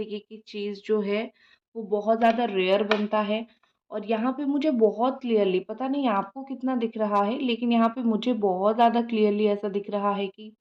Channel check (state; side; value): identical; both; correlation 1.00